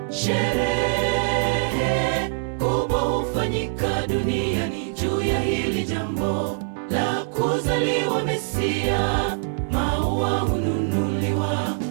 Sherehe kubwa hufanyika duniani juu ya hili jambo la kuzaliwa Mesia. Maua hununuliwa,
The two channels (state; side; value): silent; left; digital silence